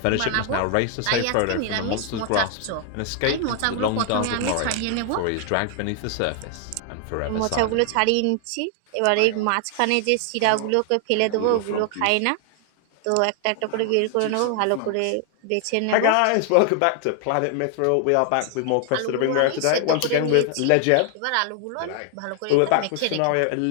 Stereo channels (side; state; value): both; different; correlation 0.00